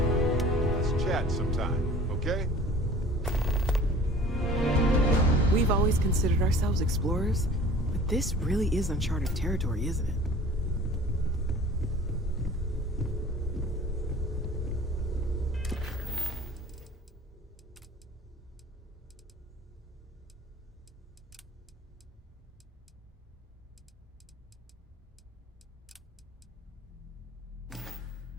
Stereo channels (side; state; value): both; normal; correlation 0.46